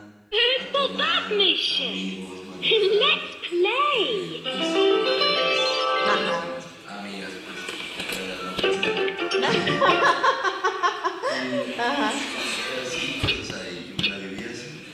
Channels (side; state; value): both; identical; correlation 1.00